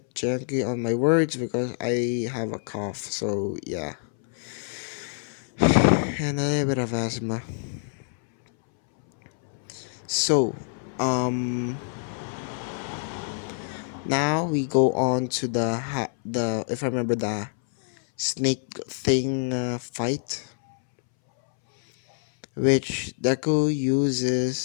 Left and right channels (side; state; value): right; silent; 61 dB below the other